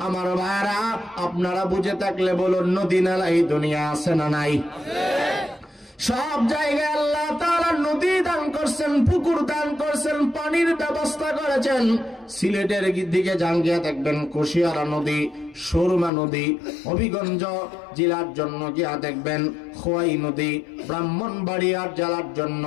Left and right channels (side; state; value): right; drops out; at 16.1 s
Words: আমার ভাইরা, আপনারা বুঝে থাকলে বলুন, নদী নালা এই দুনিয়া আছে না নাই? সব জায়গায় আল্লাহ তাআলা নদী দান করছেন, পুকুর দান করছেন, পানির ব্যবস্থা করেছেন। সিলেটের দিকে যান গিয়ে দেখবেন কুশিয়ারা নদী, সুরমা নদী। হবিগঞ্জ জেলার জন্য গিয়া দেখবেন খোয়াই নদী। ব্রাহ্মণবাড়িয়ার জেলার জন্য